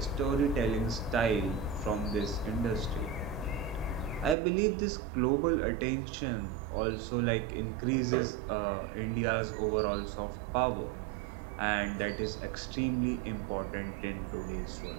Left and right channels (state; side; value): drops out; left; at 4.4 s